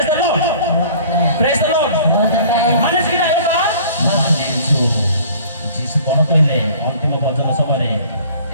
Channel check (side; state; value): both; inverted; correlation -0.49